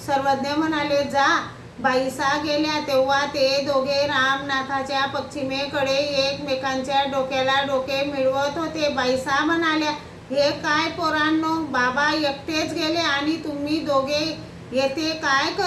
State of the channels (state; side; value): identical; both; correlation 1.00